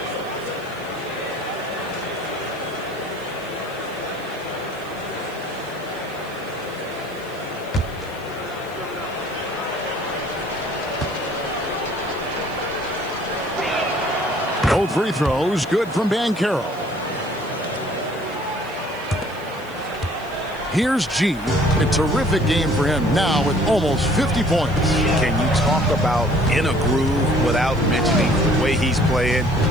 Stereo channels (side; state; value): left; noise; hiss, 24 dB below the sound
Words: Both free throws good from Banchero. Here's G. A terrific game for him now with almost 50 points. Can you talk about in a groove without mentioning the way he's playing?